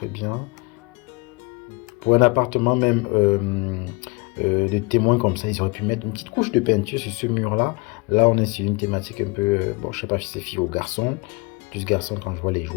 bien. Pour un appartement même de témoins comme ça, ils auraient pu mettre une petite couche de peinture sur ce mur-là. Là, on est sur une thématique un peu, bon, je sais pas si c'est fille ou garçon, plus garçon quand je vois les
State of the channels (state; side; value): quieter; right; 26.6 dB